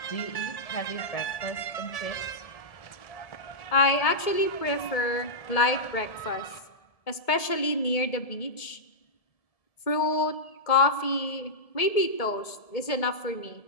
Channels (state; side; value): late; right; 1.7 ms